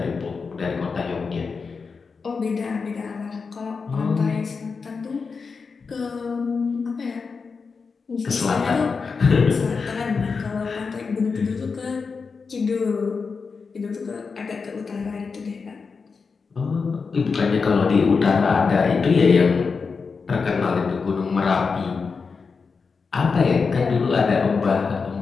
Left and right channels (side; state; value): right; quieter; 5.0 dB